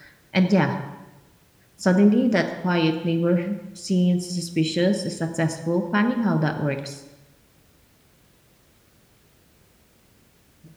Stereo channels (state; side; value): identical; both; correlation 1.00